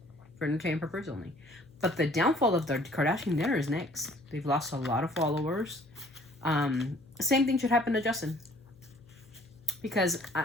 for entertainment purposes only. But the downfall of the Kardashian dinner is next. They've lost a lot of followers. Same thing should happen to Justin. Because,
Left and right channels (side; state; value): left; noise; hum, 27 dB below the sound